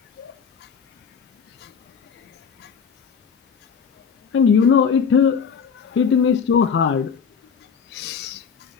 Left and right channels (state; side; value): quieter; right; 6.4 dB